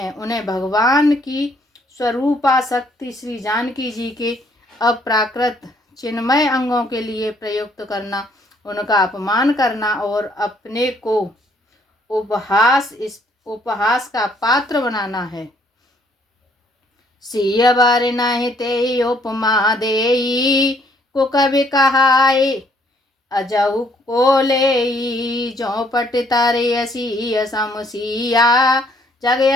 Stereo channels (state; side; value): normal; both; correlation 0.66